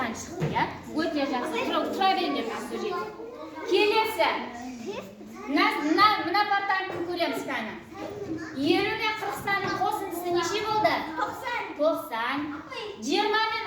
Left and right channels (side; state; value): both; identical; correlation 1.00